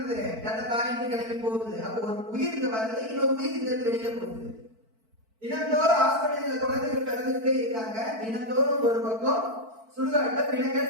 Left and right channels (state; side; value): late; left; 4.5 ms